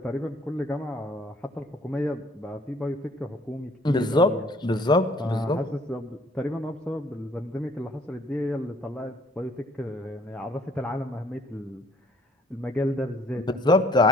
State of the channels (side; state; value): both; normal; correlation 0.60